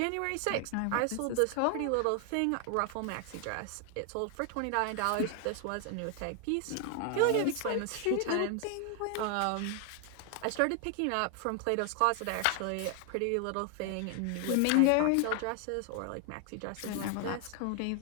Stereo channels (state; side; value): different; both; correlation 0.00